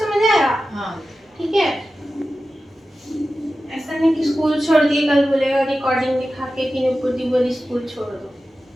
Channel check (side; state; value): both; normal; correlation 0.94